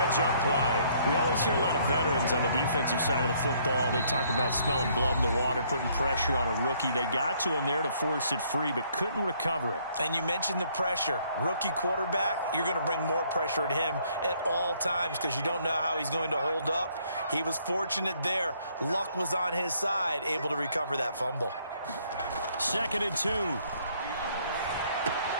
play. We always hear a lot of veterans on the defensive side of the football. They talk about smelling blood in the water, putting pressure on a rookie. They got to him there to force it free, but couldn't recover it. And you mentioned the pressure. Rookie quarterback, you're going to bring more pressure at him at all times because you don't know how he's going to hold up. He was fortunate there. Luck was on his side, able to recover that fumble. 2nd and 2.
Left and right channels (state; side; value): inverted; both; correlation -0.66